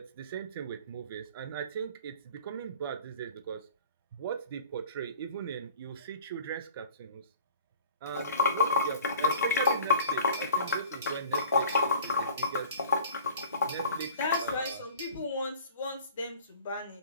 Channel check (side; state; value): both; inverted; correlation -0.45